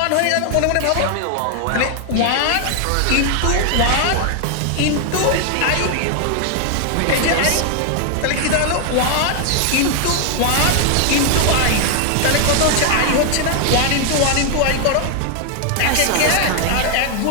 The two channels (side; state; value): both; different; correlation 0.00